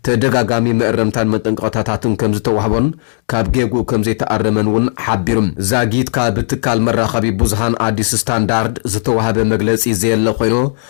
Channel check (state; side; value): silent; right; digital silence